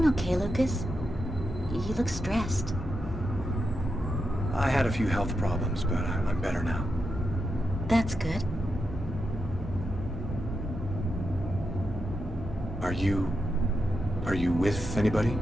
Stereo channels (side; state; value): both; normal; correlation 0.86